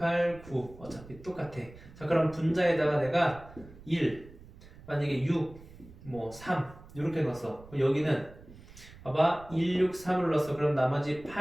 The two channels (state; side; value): noise; right; rumble, 19 dB below the sound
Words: 9 어차피 똑같아. 자, 그럼 분자에다가 내가 1 만약에 6 뭐 3 이렇게 넣었어. 여기는 봐봐 1, 6, 3을 넣었어. 그럼 나머지